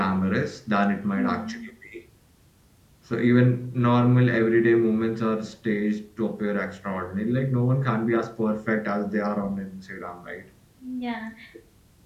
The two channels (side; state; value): both; identical; correlation 1.00